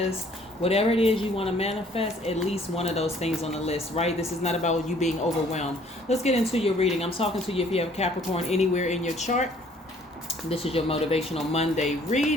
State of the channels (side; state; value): both; normal; correlation 0.59